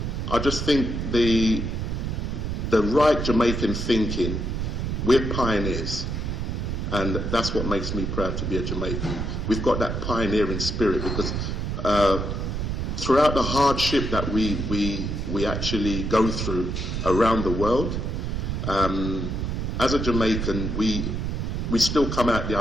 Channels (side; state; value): right; noise; rumble, 2 dB below the sound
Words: I just think the right Jamaican thinking, we're pioneers, and that's what makes me proud to be a Jamaican. We've got that pioneering spirit, because throughout the hardship that we actually go through around the world, as a Jamaican, we still come out the